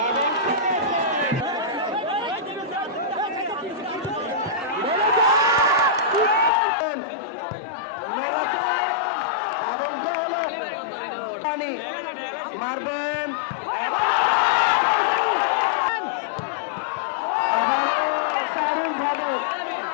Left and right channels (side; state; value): right; drops out; at 6.5 s